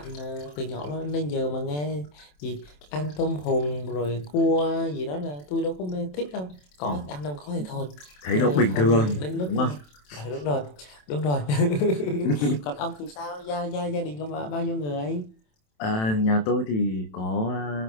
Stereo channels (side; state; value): right; late; 27 ms